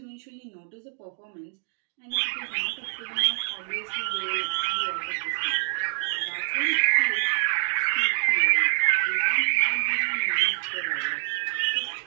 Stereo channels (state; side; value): silent; left; digital silence